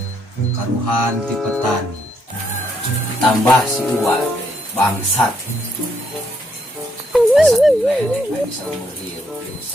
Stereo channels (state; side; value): normal; both; correlation 0.73